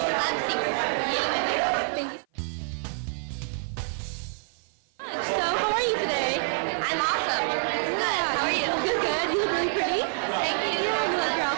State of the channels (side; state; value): left; silent; 55 dB below the other